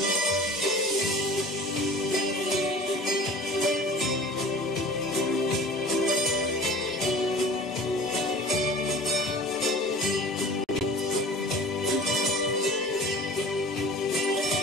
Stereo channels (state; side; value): normal; both; correlation 0.42